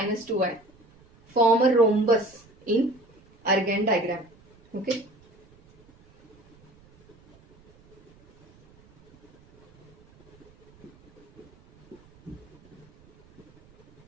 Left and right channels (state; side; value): noise; right; rumble, 29 dB below the sound